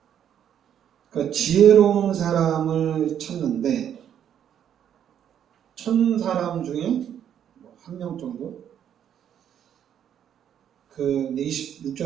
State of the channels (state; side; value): quieter; left; 9.5 dB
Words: 그러니까 지혜로운 사람을 찾는데 1000사람 중에 한 명 정도. 그